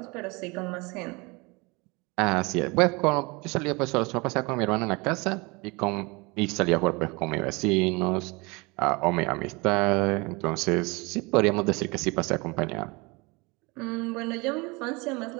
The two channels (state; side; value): quieter; left; 26.4 dB